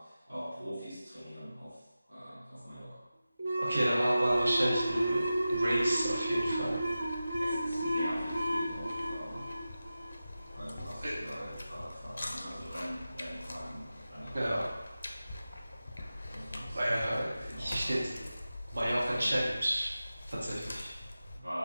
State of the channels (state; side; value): inverted; both; correlation -0.94